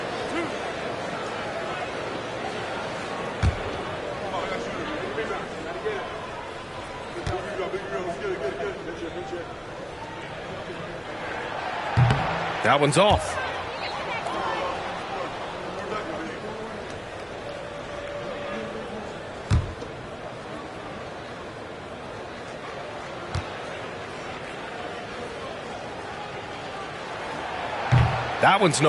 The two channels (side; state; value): both; identical; correlation 1.00